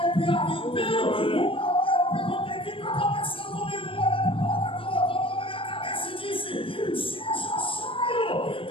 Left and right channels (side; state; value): right; late; 0.26 ms